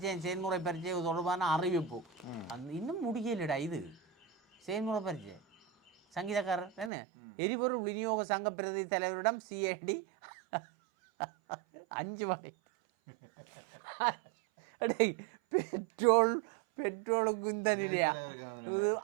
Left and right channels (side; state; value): left; drops out; at 6.9 s